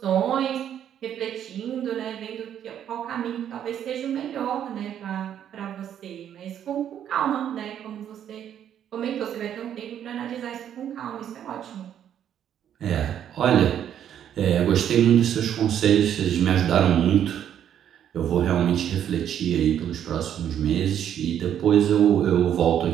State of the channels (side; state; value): left; quieter; 9.8 dB